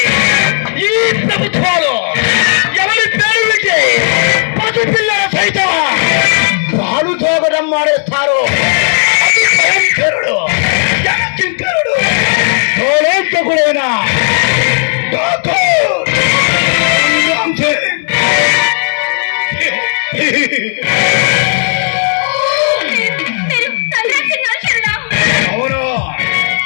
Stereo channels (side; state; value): right; silent; digital silence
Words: ఈ ప్రభుత్వాలు, ఎవరి పేరు వింటే పసిపిల్లల సైతం పాలు తోగడం మానేస్తారు. అతి భయంకరుడు, జనచింకరుడు, తోలంతకుడైన ఠాకూర్ రామ్ సింగ్. మీరు సర్దార్ సింగ్ అనుచరుడా? అవును